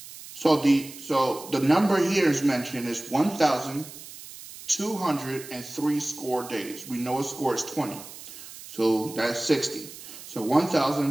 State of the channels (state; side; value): noise; right; hiss, 15 dB below the sound